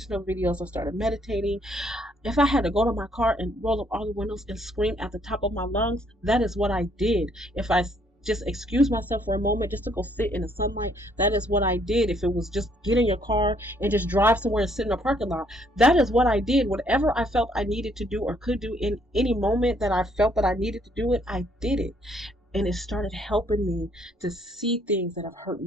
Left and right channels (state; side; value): normal; both; correlation 0.67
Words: videos. I started meditating. If I had to go to my car and roll up all the windows and scream at the top of my lungs, that is what I did. If I just excuse myself for a moment just to go sit in the sunlight, that is what I did. If it was just get in your car and just drive somewhere and sit in a parking lot, that is what I did. Whatever I felt I needed to do or could do in any moment that I felt that I needed to do it, I did it. And it started helping me to see things that have hurt